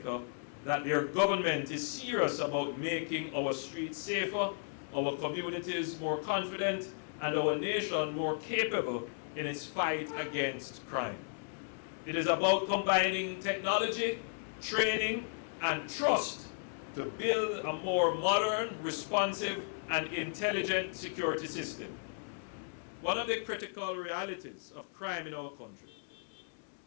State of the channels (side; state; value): right; silent; digital silence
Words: that their government is serious about making our streets safer, our communities more confident, and our nation more capable in its fight against crime. It is about combining technology, training, and trust to build a more modern, responsive, and intelligent security system. One of the critical realities of crime in our country